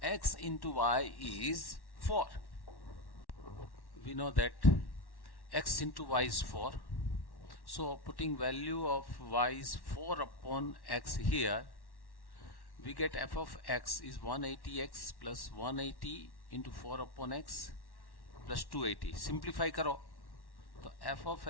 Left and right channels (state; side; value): late; right; 1.1 ms